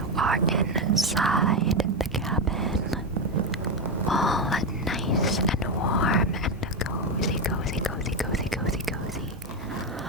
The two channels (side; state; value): both; normal; correlation 0.10